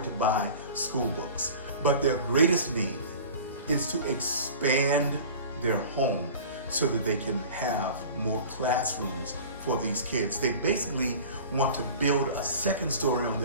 to buy school books. But their greatest need is to expand their home so that they can have more classrooms for these kids. They basically want to build a second story on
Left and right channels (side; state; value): both; inverted; correlation -0.40